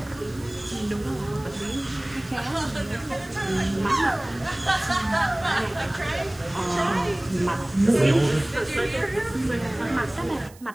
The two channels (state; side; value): noise; right; hiss, 24 dB below the sound